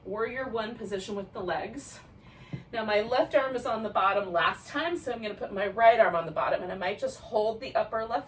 warrior one position with the legs. Now my left arm is on the bottom last time, so I'm gonna put my right arm on the bottom, and I might just hold the upper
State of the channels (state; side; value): identical; both; correlation 1.00